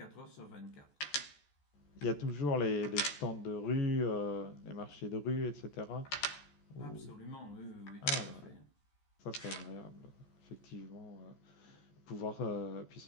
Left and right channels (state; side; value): late; right; 14 ms